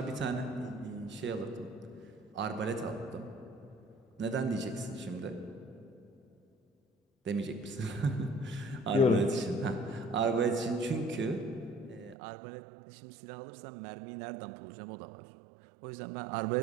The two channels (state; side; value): drops out; left; at 12.2 s